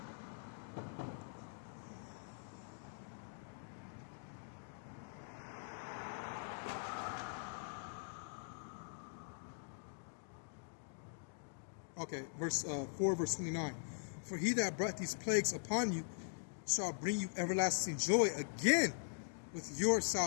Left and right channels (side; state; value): right; silent; digital silence